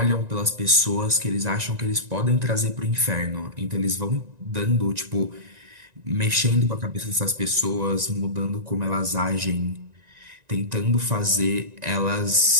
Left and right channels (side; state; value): left; late; 1.9 ms